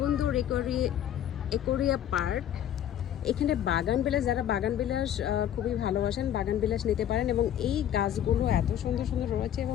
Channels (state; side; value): quieter; right; 10.6 dB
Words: একুরিয়া পার্ক। এখানে বাগান বিলাস, যারা বাগান বিলাস খুবই ভালোবাসেন বাগান বিলাস নিতে পারেন, এবং এই গাছগুলো এত সুন্দর সুন্দর রয়েছে